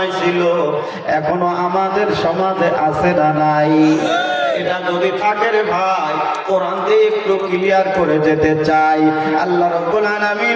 ছিল, এখনো আমাদের সমাজে আছে না নাই? এটা যদি থাকে রে ভাই, কোরআন দিয়ে একটু ক্লিয়ার করে যেতে চাই। আল্লাহ রাব্বুল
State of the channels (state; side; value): identical; both; correlation 1.00